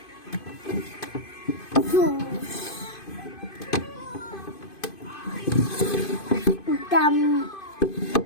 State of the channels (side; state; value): right; late; 2.5 ms